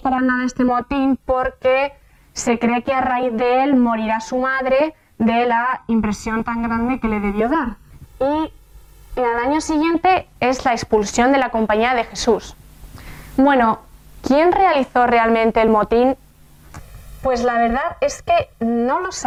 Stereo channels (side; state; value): both; identical; correlation 1.00